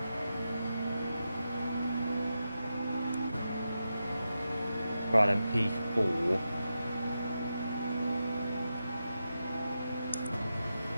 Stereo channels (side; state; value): both; inverted; correlation -0.89